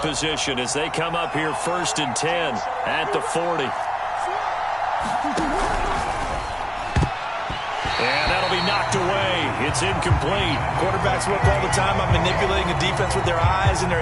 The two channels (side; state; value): both; identical; correlation 1.00